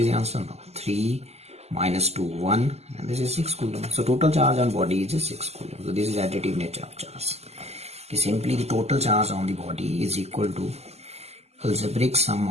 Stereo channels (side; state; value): left; late; 0.30 ms